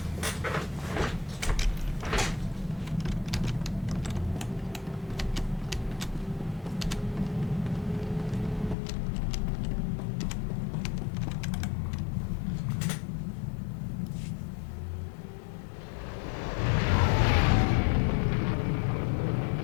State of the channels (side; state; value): right; drops out; at 8.8 s